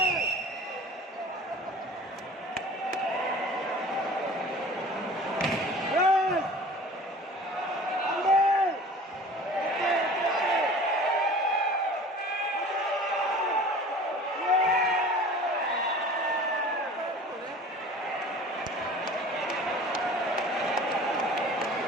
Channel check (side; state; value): both; normal; correlation 0.43